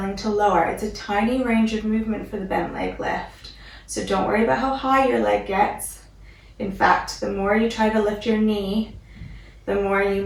to lower. It's a tiny range of movement for the bent leg lift, so don't worry about how high your leg gets. In fact, the more you try to lift your knee, the more you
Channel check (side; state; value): both; identical; correlation 1.00